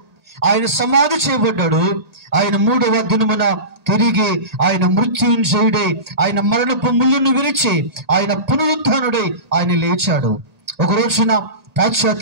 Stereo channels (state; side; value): late; left; 1.8 ms